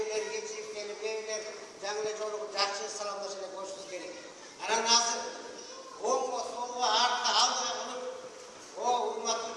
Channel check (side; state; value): both; identical; correlation 1.00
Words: geçip gelip evler, canlı çoluğu, жақсы salamlaşıyla koşmamız gerek. Anam hazır. Oğlum soluğa arka aldığı bulup o urmatlı